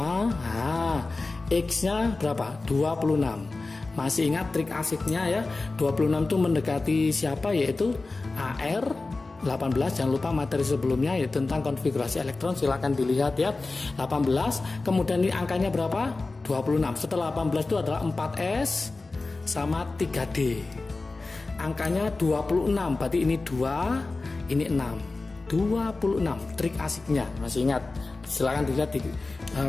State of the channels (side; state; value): right; quieter; 3.5 dB